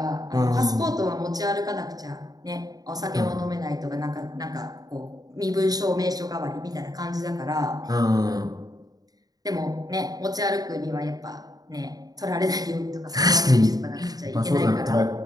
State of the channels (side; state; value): left; late; 0.18 ms